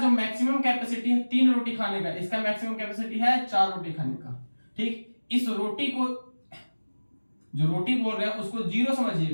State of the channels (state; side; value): inverted; both; correlation -1.00